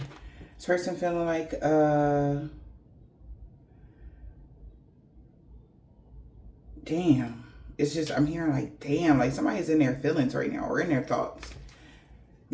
person feeling like, damn. It's just, I'm hearing like, damn, like somebody's in their feelings right now, or in their thoughts.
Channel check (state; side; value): identical; both; correlation 1.00